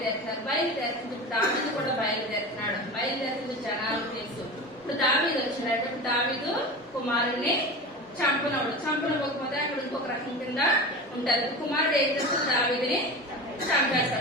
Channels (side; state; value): both; normal; correlation 0.30